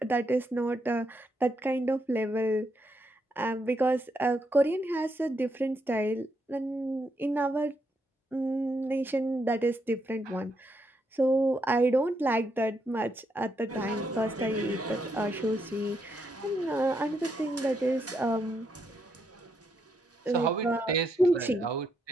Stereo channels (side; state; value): both; normal; correlation 0.79